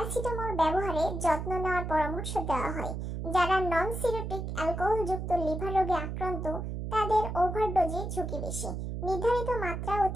ব্যবহারে যত্ন নেওয়ার পরামর্শ দেওয়া হয়। যারা নন সিরোটিক অ্যালকোহলযুক্ত লিভার রোগে আক্রান্ত, তাদের ওভারডোজের ঝুঁকি বেশি। নির্ধারিত মাত্রা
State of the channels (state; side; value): noise; right; hum, 4 dB below the sound